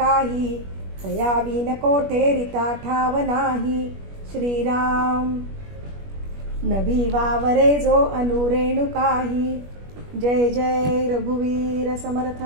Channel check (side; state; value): left; late; 21 ms